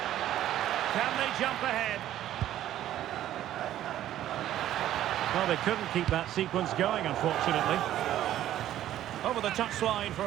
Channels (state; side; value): quieter; left; 12.5 dB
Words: Can they jump ahead? Well, they couldn't keep that sequence going, unfortunately. Over the touchline for